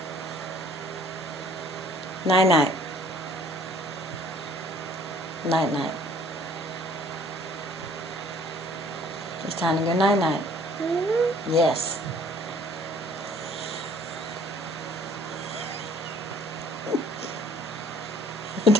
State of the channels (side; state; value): both; normal; correlation 0.56